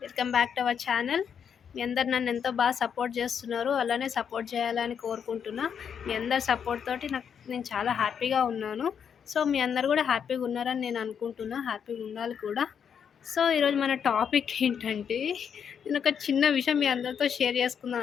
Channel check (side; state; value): right; quieter; 7.6 dB